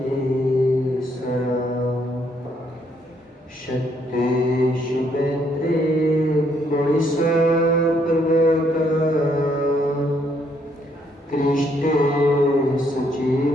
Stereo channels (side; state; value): both; normal; correlation 0.70